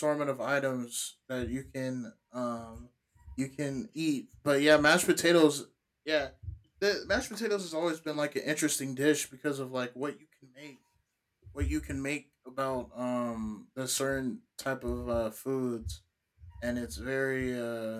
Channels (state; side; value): identical; both; correlation 1.00